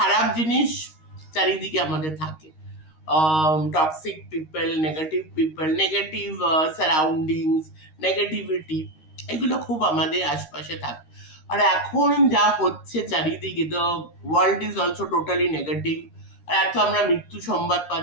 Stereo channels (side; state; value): right; late; 13 ms